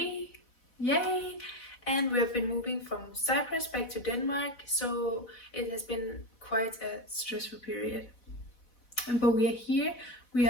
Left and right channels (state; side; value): late; right; 4.1 ms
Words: yay, and we have been moving from Cyprus back to Denmark, so it has been quite a stressful period. But we are here. We